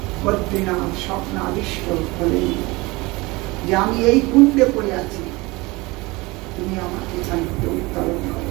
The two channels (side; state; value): left; quieter; 23.2 dB